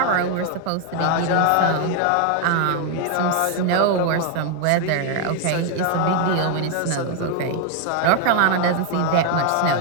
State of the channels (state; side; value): different; both; correlation 0.00